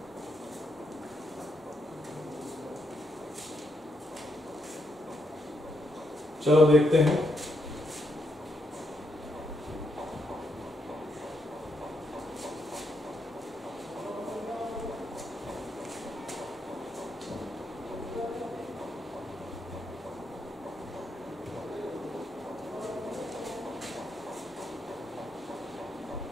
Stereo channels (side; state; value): both; normal; correlation 0.79